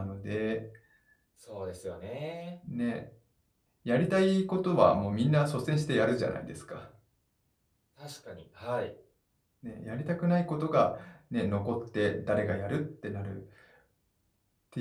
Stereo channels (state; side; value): identical; both; correlation 1.00